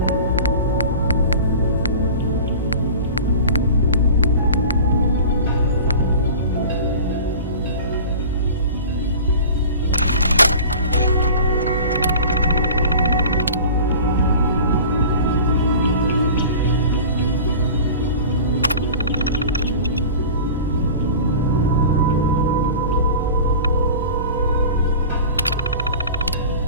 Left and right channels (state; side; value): inverted; both; correlation -0.37